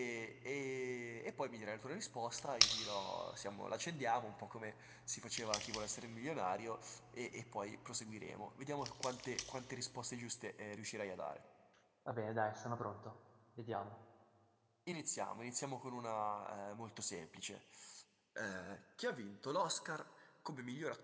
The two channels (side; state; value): both; identical; correlation 1.00